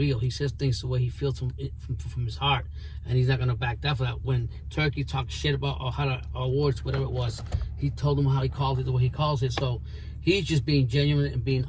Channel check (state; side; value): identical; both; correlation 1.00